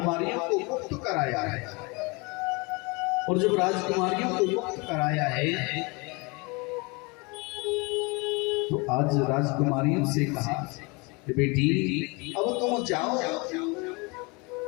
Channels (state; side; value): quieter; right; 28.2 dB